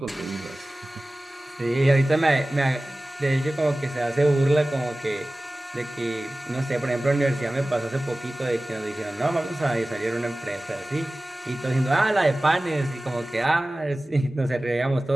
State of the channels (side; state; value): both; normal; correlation 0.97